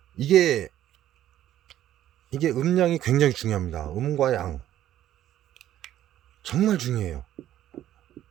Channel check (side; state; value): left; quieter; 12.4 dB